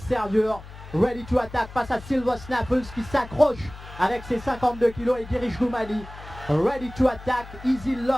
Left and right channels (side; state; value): left; noise; hum, 16 dB below the sound